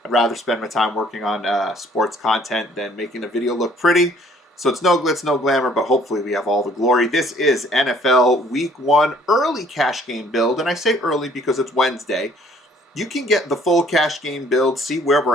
I'd rather spend my time working on sports content than making a video look pretty. So it's no glitz, no glamour, but hopefully we have all the glory. This is NFL Week 1 early cash game build, and I say early because it's Wednesday. You can get the full cash game build, see where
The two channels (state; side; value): normal; both; correlation 0.59